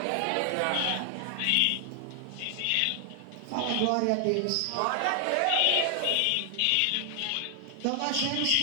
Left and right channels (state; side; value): different; both; correlation 0.00